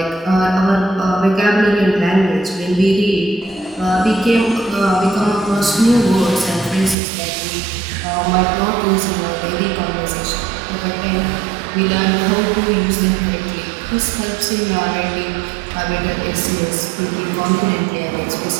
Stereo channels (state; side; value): drops out; left; at 7.0 s